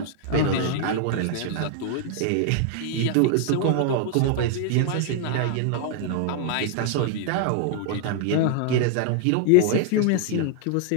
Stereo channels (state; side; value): different; both; correlation 0.00